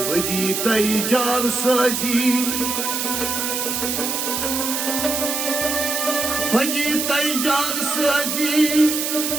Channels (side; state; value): right; noise; hiss, 1 dB below the sound